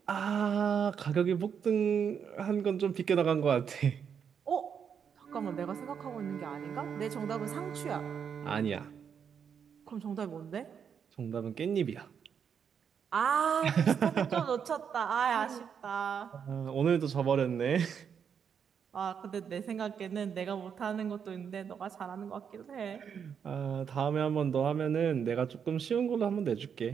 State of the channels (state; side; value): quieter; left; 7.4 dB